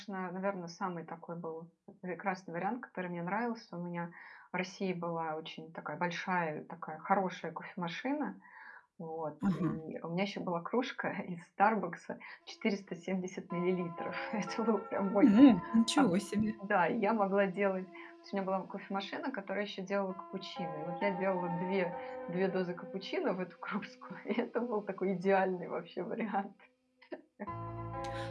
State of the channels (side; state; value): both; identical; correlation 1.00